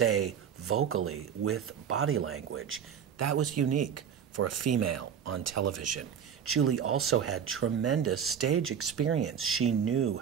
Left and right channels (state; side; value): quieter; left; 8.1 dB